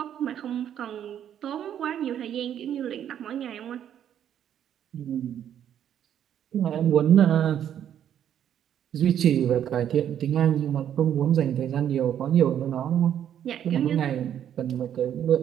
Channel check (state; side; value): quieter; left; 9.9 dB